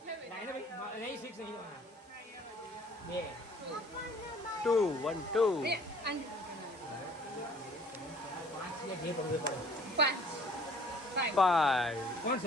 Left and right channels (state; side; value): normal; both; correlation 0.54